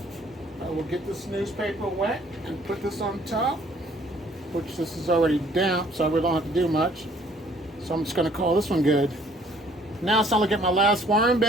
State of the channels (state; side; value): normal; both; correlation 0.60